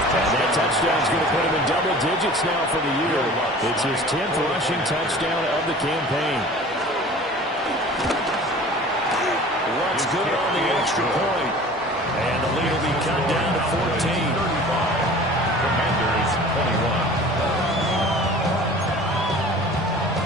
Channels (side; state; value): both; normal; correlation 0.43